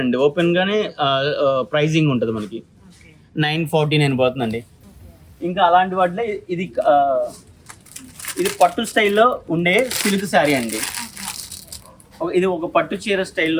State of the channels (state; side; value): identical; both; correlation 1.00